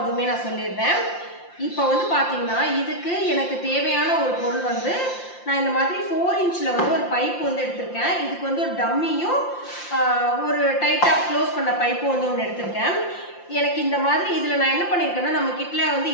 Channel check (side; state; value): right; late; 5.7 ms